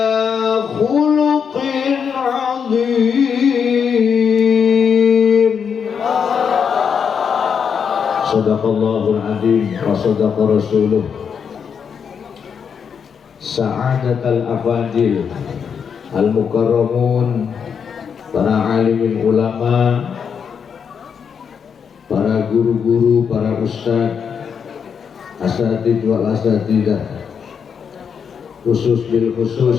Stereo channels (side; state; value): right; quieter; 6.9 dB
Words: Sadaqallahul adzim wa sadaqa rasuluh. Sa'adatal afadil al-mukarramun, para alimin ulama, para guru-guru, para ustadz, asatidz wal asatidah, khusus bil